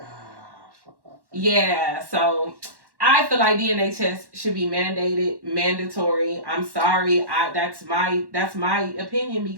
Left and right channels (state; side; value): late; left; 1.1 ms